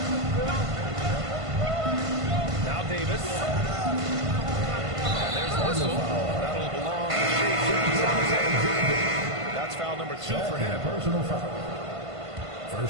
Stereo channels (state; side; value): late; left; 1.5 ms